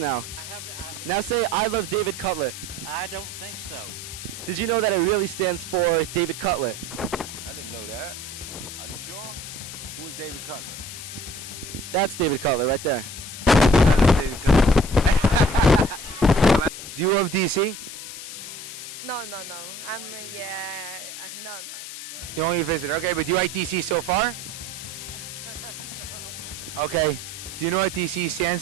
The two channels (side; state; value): left; noise; hiss, 10 dB below the sound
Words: Now say, I love David Cutler. I don't think so. Did you know that it really stands for David Cutler? I didn't know that. Are you sure? Who is David Cutler? That's David Cutler right there. David Cutler. Do you love DC? No. No. You only visitor. Okay, but do you like DC so far? Okay. Do you know what DC